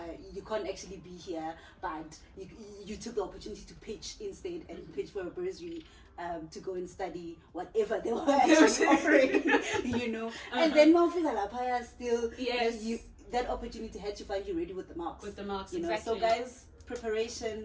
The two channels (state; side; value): identical; both; correlation 1.00